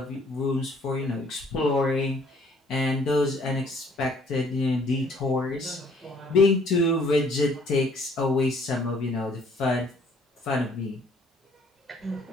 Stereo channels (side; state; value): both; normal; correlation 0.61